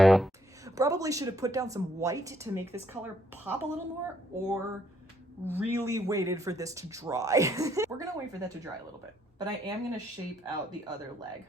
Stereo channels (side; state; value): both; normal; correlation 0.70